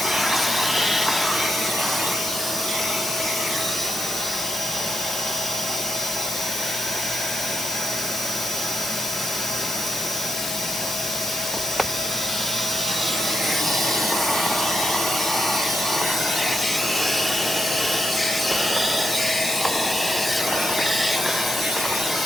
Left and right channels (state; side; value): noise; left; hiss, 5 dB below the sound